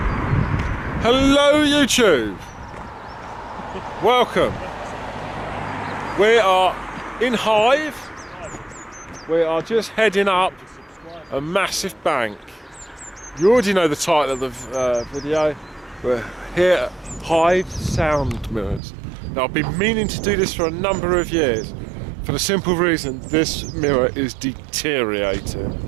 Hello YouTube! Welcome. We are in Hythe. We are just heading up a massive bank. You already know the title of the video. We're here at Hythe Sound Mirrors. Now I've been meaning to do this for a number of years for the simple reason this mirror is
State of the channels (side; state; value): left; drops out; at 18.8 s